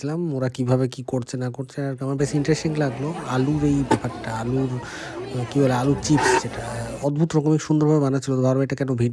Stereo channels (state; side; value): identical; both; correlation 1.00